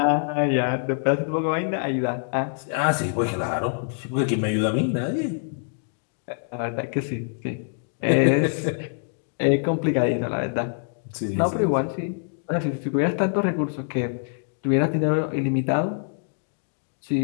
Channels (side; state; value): right; silent; digital silence